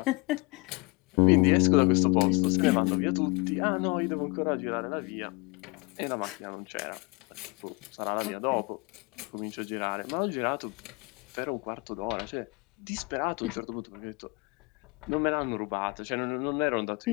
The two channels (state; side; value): quieter; right; 27.9 dB